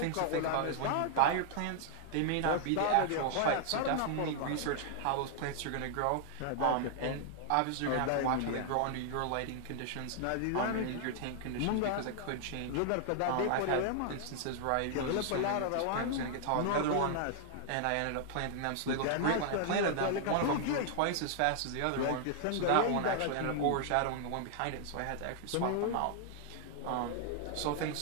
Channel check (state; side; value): different; both; correlation 0.00